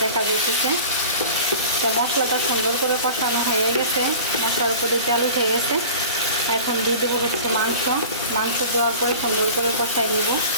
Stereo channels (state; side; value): inverted; both; correlation -0.39